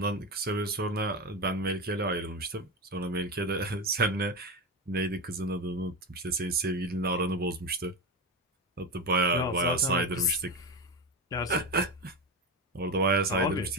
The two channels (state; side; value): normal; both; correlation 0.17